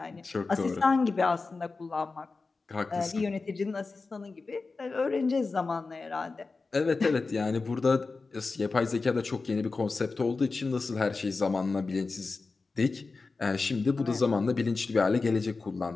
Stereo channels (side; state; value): right; quieter; 4.0 dB